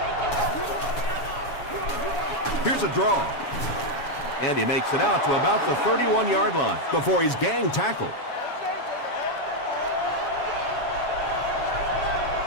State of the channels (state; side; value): late; right; 7.0 ms